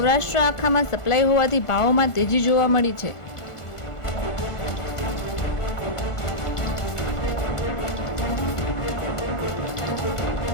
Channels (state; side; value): late; right; 1.4 ms